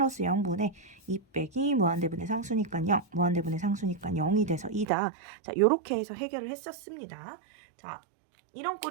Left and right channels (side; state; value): left; drops out; at 4.9 s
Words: 0분의 2 빼기 무한대분의 상수니까 0, 무한대분의 상수니까 0이 돼서 2다. 자, 요렇게 해서 해결을 했었습니다. 자, 이런